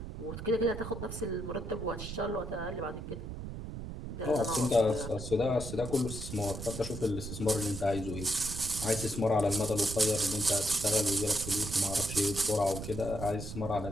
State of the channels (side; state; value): right; noise; rumble, 8 dB below the sound